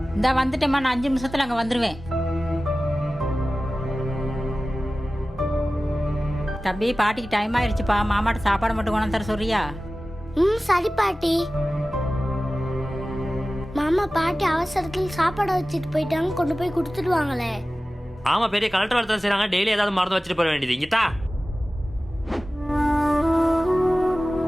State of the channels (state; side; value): normal; both; correlation 0.96